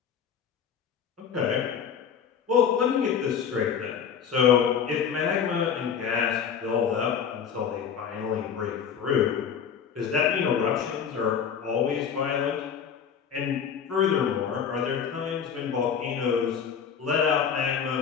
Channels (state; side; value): quieter; right; 7.4 dB